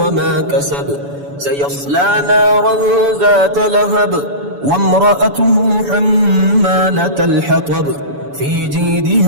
كسب، سيصلى نارا ذات لهب، وامرأته حمالة الحطب، في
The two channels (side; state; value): left; late; 7.0 ms